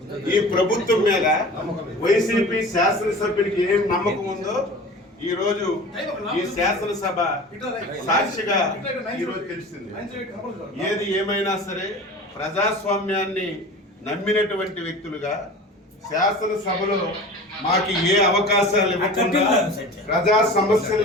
ఈ ప్రభుత్వం మీద వైసీపీ శాసనసభ్యుడికి ఏం నమ్మకం ఉందో ఈ రోజు ఈ శాసనసభ సాక్షిగా ఈరోజు తెలిసింది. ఏది ఏమైనా సరే ప్రజాస్వామ్యాన్ని నమ్మినటువంటి వ్యక్తులుగా శాసనసభలో మాకు ఏ అవకాశాలు ఇవ్వకుండా, ప్రజా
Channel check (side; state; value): both; normal; correlation 0.38